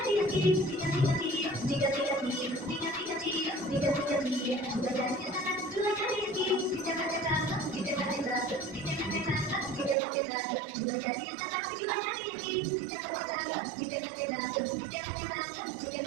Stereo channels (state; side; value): drops out; left; at 10.0 s